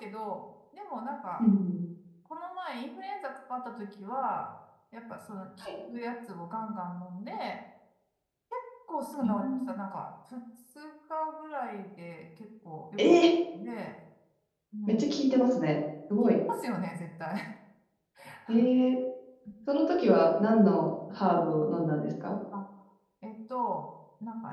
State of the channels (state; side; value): identical; both; correlation 1.00